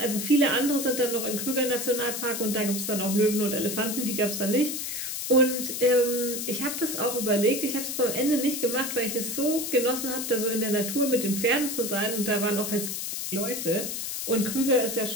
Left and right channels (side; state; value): left; noise; hiss, 4 dB below the sound